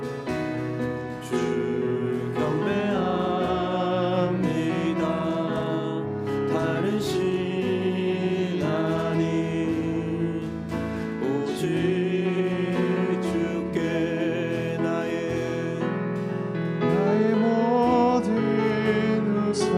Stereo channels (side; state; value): both; identical; correlation 1.00